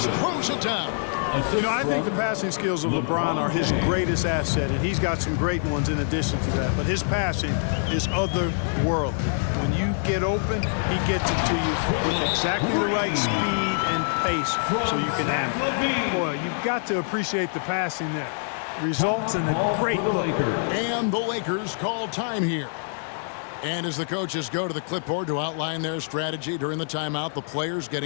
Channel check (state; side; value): silent; right; digital silence